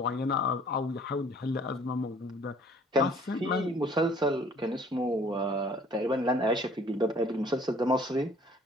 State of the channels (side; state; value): both; normal; correlation 0.55